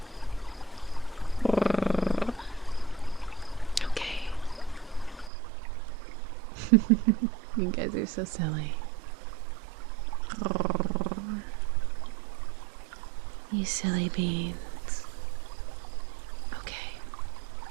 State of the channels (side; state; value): left; drops out; at 5.3 s